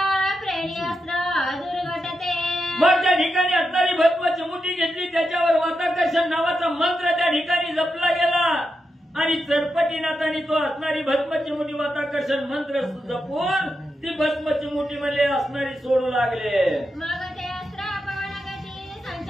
प्रेणी अस्त्र दुर्घटते. मग त्या ठिकाणी असणारी भस्माची मुठी घेतली, त्याच्यावर वाताकर्षण नावाचा मंत्र त्या ठिकाणी जपला गेला आणि चरपटीनाथाने तो असणारी भस्माची मुठी वाताकर्षण मंत्र जपून ती भस्माची मुठी मध्ये असणारी सोडू लागले. मग ते अस्त्र पवनगती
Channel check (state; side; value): normal; both; correlation 0.87